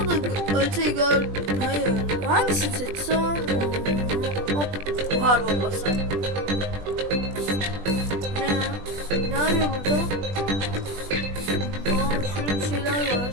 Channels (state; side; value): late; left; 20 ms